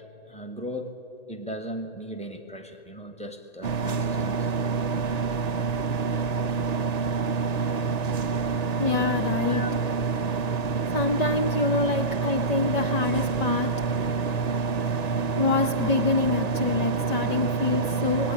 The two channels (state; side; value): late; right; 1.9 ms